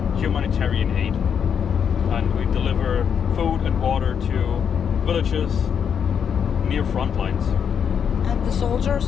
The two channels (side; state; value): right; quieter; 7.6 dB